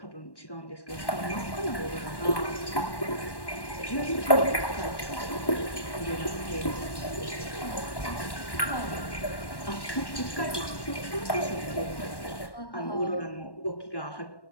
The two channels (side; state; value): right; late; 1.1 ms